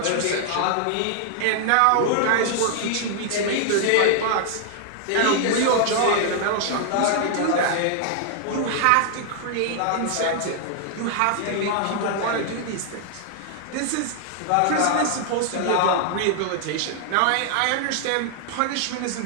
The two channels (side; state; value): both; different; correlation 0.00